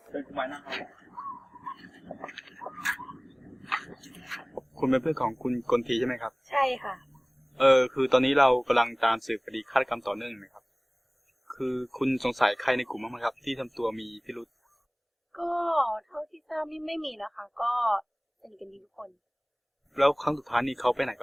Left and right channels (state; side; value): identical; both; correlation 1.00